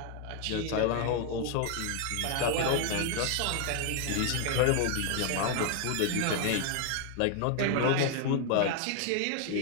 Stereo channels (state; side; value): different; both; correlation 0.01